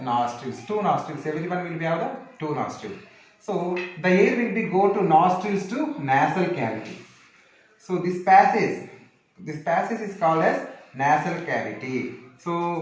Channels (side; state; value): both; identical; correlation 1.00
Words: nostrils. Two nostrils. Everyone will be have the two nostrils. So the air will be go to nostrils to nasal cavity. So this passage is called as nasal cavity.